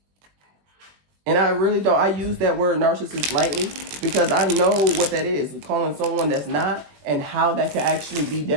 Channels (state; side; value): late; left; 20 ms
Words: And I really don't. I use that word narcissist lightly because I know what that is. Calling someone that's not, and how that could actually be